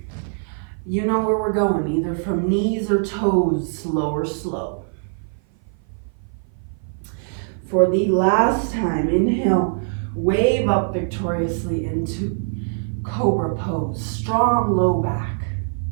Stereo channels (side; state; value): left; silent; 56 dB below the other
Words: You know where we're going, either from knees or toes, slow or slow. For the last time, inhale, wave up victoriously into cobra pose, strong low back.